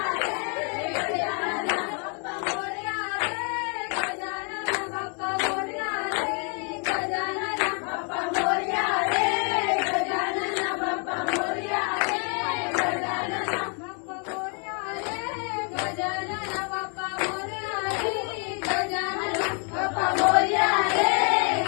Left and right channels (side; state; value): right; quieter; 39.0 dB